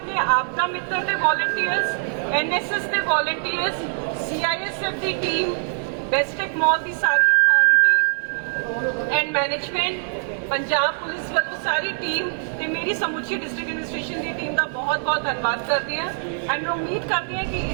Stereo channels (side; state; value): left; silent; digital silence